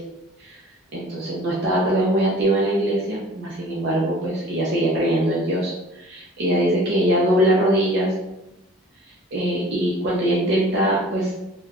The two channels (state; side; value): normal; both; correlation 0.47